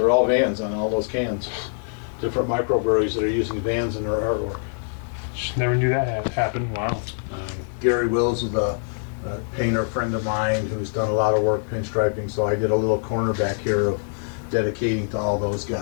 all vans on all those cans. Different microbreweries that are using vans in their artwork. Just never knew that had happened. Wow. Gary Wills is a painter friend of mine who's done a lot of work pinstriping, so I did a little corner back here of dedicating to all those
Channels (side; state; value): right; silent; digital silence